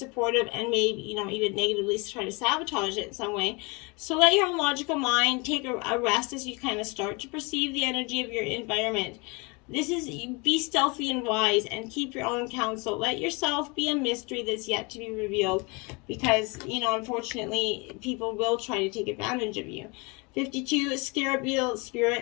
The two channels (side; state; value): right; quieter; 28.8 dB